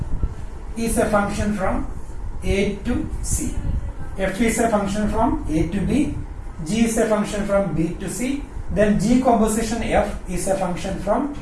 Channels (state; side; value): identical; both; correlation 1.00